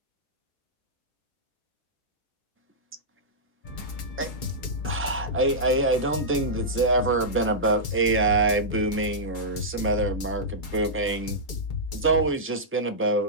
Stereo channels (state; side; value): normal; both; correlation -0.12